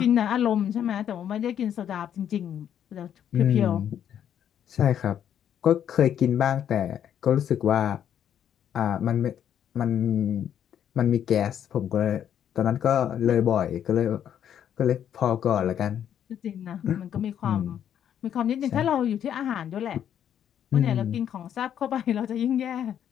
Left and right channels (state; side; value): quieter; right; 9.6 dB